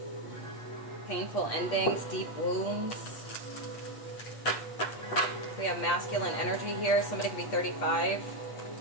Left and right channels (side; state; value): right; late; 8.2 ms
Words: painful endings, deep wounds. We have masculine energy here. Somebody could be 35.